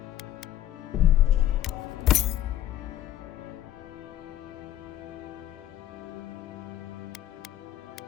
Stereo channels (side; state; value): right; quieter; 12.5 dB